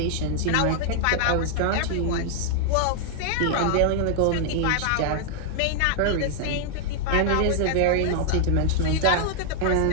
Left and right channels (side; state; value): both; different; correlation -0.01